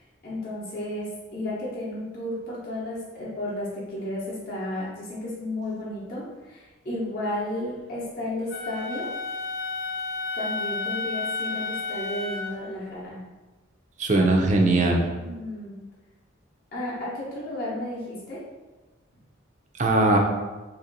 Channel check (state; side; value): normal; both; correlation 0.37